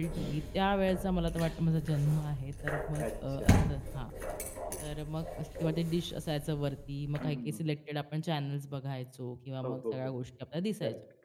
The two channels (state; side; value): identical; both; correlation 1.00